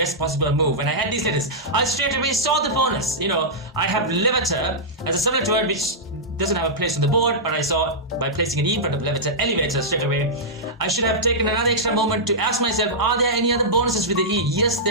possible move. When I had these letters, I straight away saw the bonus. I have Levator as a similar word which doesn't have a place on the board, but I saw by placing an E in front of Levator, elevator straight away. I should have taken another extra moment to ask myself, are there any other bonuses with the E? Yes,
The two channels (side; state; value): both; normal; correlation -0.11